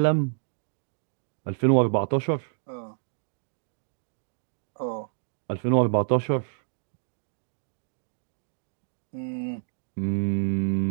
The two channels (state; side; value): silent; left; digital silence